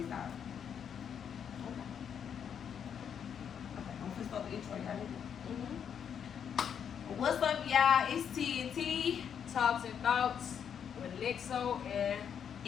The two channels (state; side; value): quieter; right; 8.0 dB